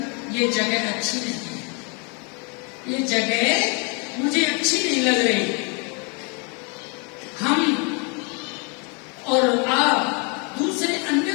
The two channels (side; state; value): right; quieter; 33.7 dB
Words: ये जगह अच्छी नहीं है, ये जगह मुझे अच्छी नहीं लग रही। हम और आप दूसरे